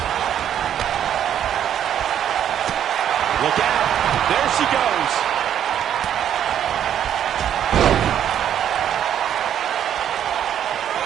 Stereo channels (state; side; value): quieter; left; 9.9 dB